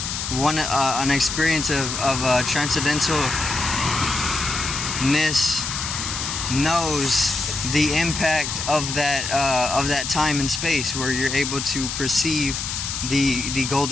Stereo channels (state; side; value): noise; left; hiss, 4 dB below the sound